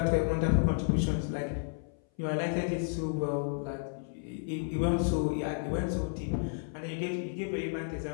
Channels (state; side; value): silent; right; 56 dB below the other